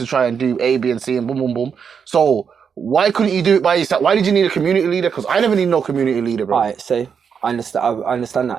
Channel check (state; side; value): quieter; left; 6.8 dB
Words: try and do A, B, and C, and boom, boom, boom. So why couldn't you do it by yourself? Why did you need a community leader? Because I never need no community leader, bro. All right, so I understand